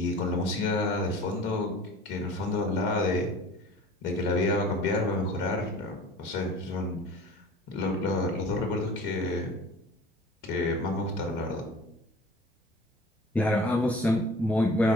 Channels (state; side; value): normal; both; correlation 0.43